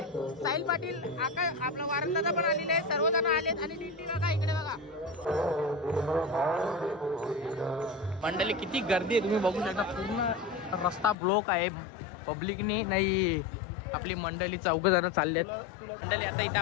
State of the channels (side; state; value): right; drops out; at 11.2 s